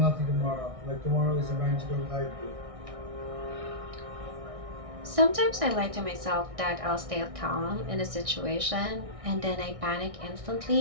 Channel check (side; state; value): left; late; 1.6 ms